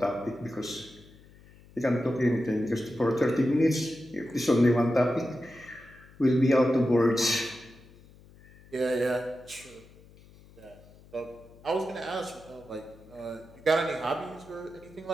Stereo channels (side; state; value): left; noise; hum, 24 dB below the sound